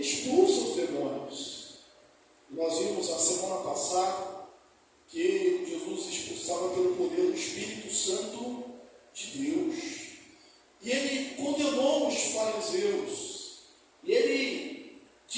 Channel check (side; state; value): both; identical; correlation 1.00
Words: expulsa os demônios. E nós vimos na semana passada que Jesus expulsava pelo poder do Espírito Santo de Deus. E ele condenou os fariseus, e ele